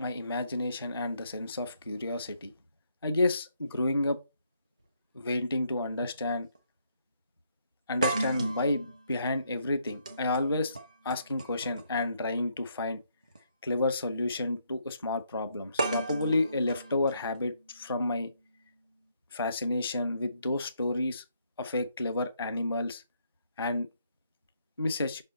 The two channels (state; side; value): inverted; both; correlation -0.73